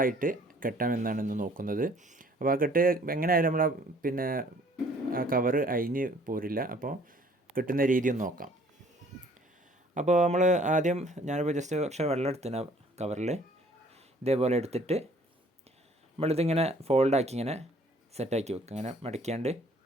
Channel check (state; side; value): normal; both; correlation 0.57